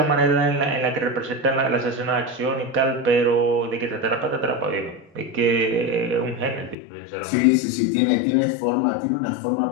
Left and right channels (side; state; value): right; drops out; at 6.8 s